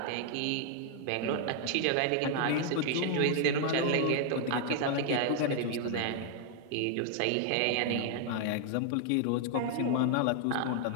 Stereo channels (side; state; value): both; different; correlation 0.00